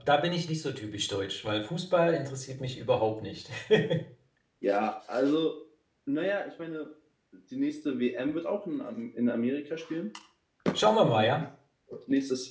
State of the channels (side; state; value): both; identical; correlation 1.00